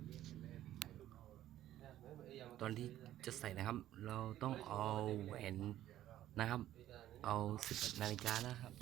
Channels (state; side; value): quieter; left; 13.0 dB